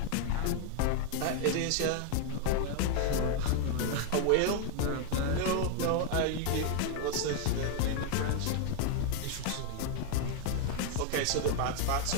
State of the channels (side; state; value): both; different; correlation 0.00